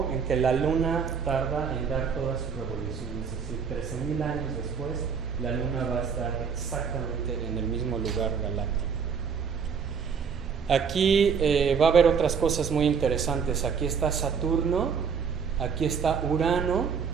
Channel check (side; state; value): left; quieter; 6.4 dB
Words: en que la Luna tarda en dar toda su revolución. Es decir, 13.000 años después, la Luna va a estar exactamente en el mismo lugar galáctico. Aquí va a haber otras cosas muy interesantes. Aquí está Saturno, aquí está Urano,